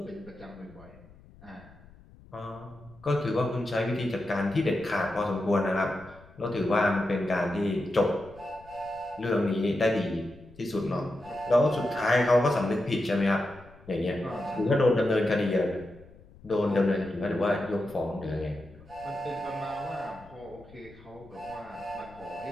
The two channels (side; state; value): left; noise; rumble, 23 dB below the sound